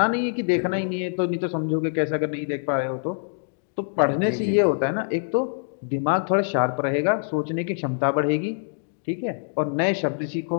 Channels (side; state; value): right; silent; digital silence